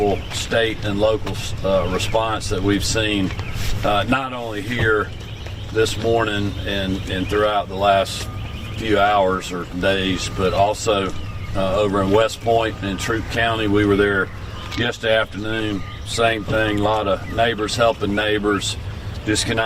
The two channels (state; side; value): identical; both; correlation 1.00